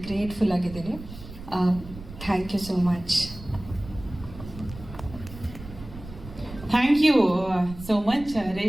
ಗ್ರೇಟ್ಫುಲ್ ಆಗಿದ್ದೀನಿ. Thank you so much. Thank you so much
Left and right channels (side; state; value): right; noise; rumble, 14 dB below the sound